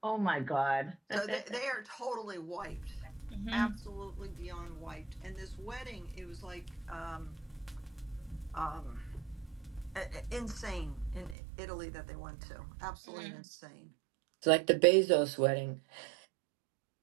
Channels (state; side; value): drops out; left; at 11.4 s